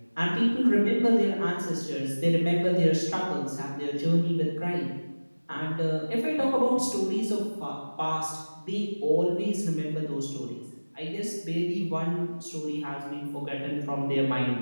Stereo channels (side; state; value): both; inverted; correlation -1.00